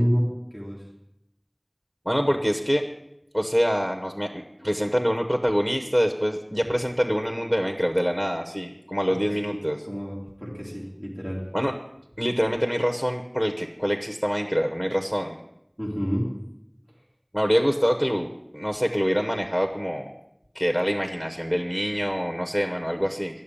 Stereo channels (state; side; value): identical; both; correlation 1.00